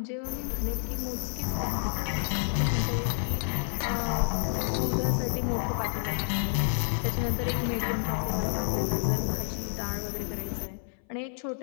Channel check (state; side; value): silent; right; 58 dB below the other